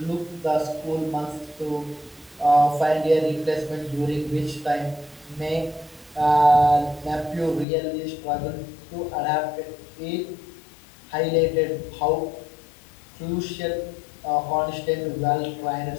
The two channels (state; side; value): drops out; right; at 7.7 s